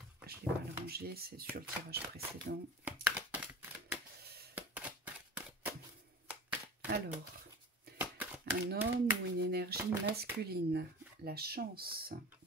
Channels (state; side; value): normal; both; correlation 0.36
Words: je l'ai mal rangée, c'est sur le tirage précédent. Alors, un homme ou une énergie masculine. La chance.